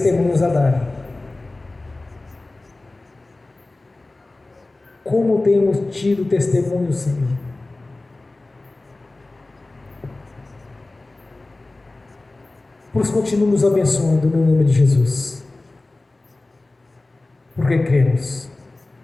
a dar. Como temos tido testemunhos, Senhor? Por isso, continue nos abençoando no nome de Jesus, porque cremos.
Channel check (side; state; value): right; quieter; 3.0 dB